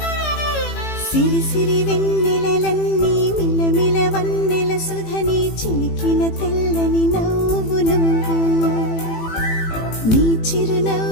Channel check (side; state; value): right; late; 18 ms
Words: సిరి సిరి వెన్నెలలన్నీ మిలమిల వన్నెల సుధని చిలికిన తెల్లని నవ్వు నువ్వు నీ